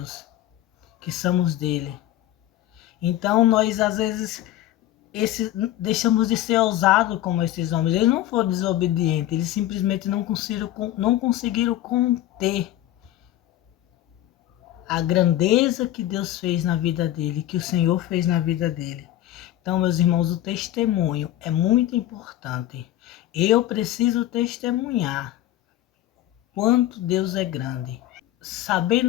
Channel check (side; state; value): right; quieter; 13.5 dB